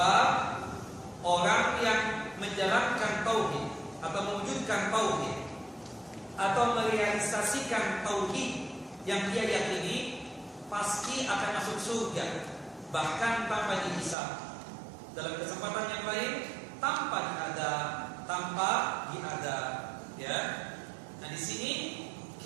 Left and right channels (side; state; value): left; drops out; at 14.2 s